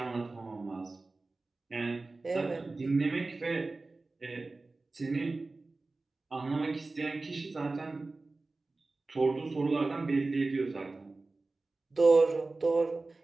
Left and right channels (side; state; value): left; quieter; 3.4 dB